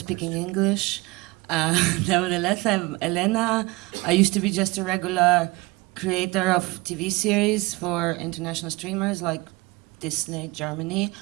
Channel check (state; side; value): quieter; left; 22.7 dB